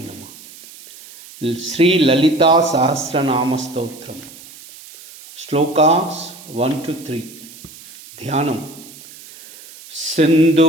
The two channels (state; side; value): noise; right; hiss, 19 dB below the sound